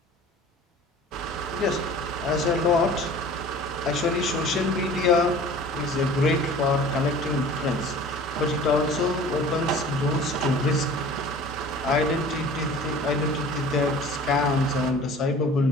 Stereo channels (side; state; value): both; normal; correlation 0.44